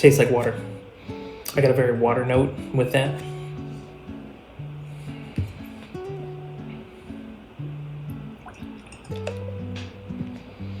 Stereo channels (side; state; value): both; identical; correlation 1.00